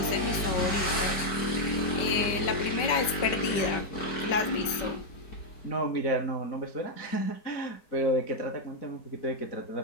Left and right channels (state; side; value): late; right; 5.2 ms